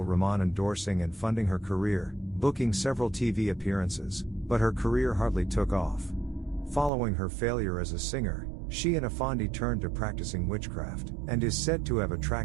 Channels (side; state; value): left; drops out; at 6.9 s